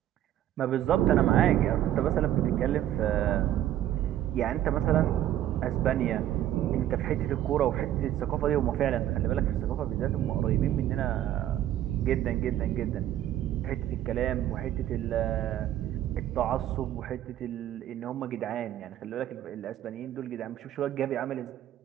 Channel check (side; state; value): left; quieter; 12.3 dB